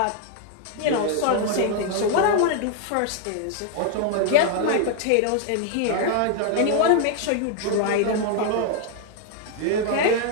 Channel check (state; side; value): different; both; correlation 0.00